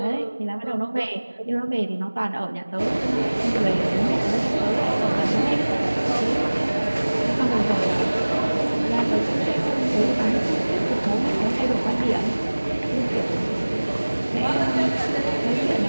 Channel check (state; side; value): inverted; both; correlation -1.00